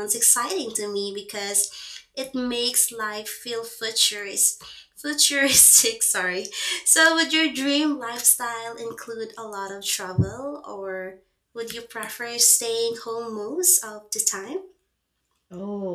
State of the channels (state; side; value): identical; both; correlation 1.00